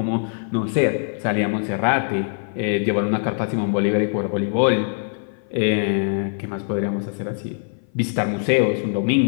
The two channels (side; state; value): right; silent; 57 dB below the other